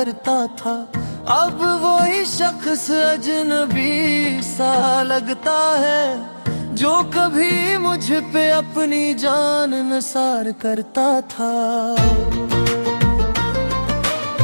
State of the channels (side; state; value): both; inverted; correlation -1.00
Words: था। अब वही शख्स अजनबी सा लगता है, जो कभी मुझ पे अपनी जान निसार करता था।